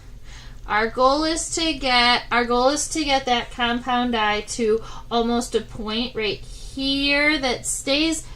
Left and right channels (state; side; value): identical; both; correlation 1.00